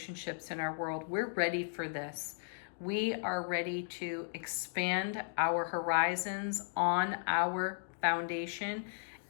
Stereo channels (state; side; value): silent; right; digital silence